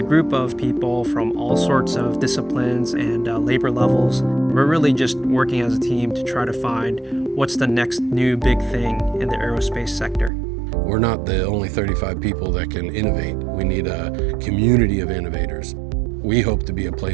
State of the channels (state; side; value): drops out; left; at 10.3 s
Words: group of people from all sorts of disciplines and labor levels. We're really just working as a team to try to find what's the next new big thing in the aerospace sector. We're not the only 35 people that can innovate. We need a community of innovators. We hope to be a